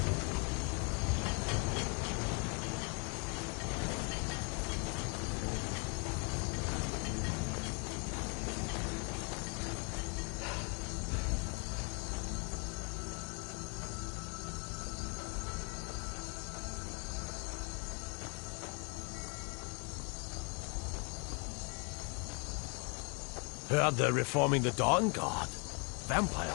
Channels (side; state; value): right; quieter; 35.2 dB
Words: Heard they're reforming the Dawn Guard. Vampire